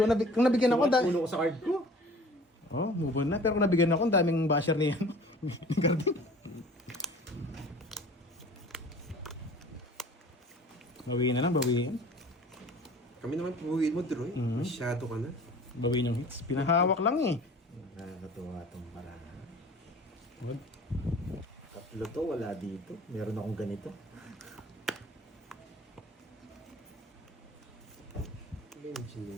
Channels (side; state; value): both; normal; correlation 0.45